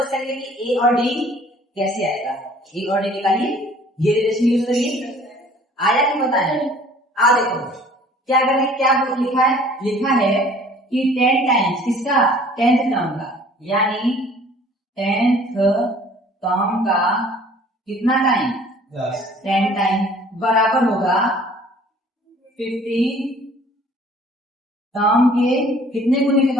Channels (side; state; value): both; normal; correlation 0.52